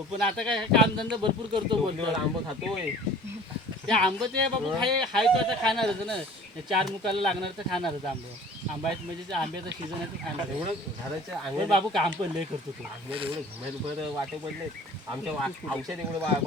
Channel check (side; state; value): both; normal; correlation 0.46